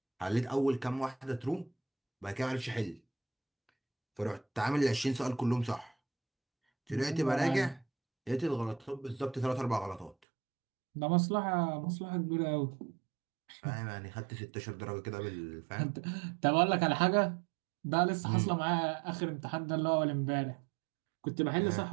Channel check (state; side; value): drops out; left; at 10.2 s